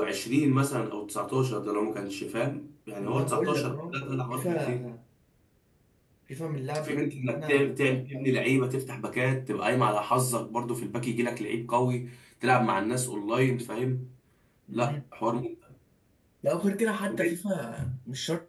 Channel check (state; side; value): identical; both; correlation 1.00